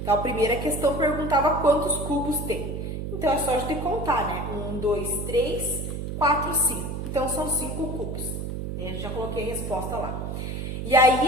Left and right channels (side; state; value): right; noise; hum, 5 dB below the sound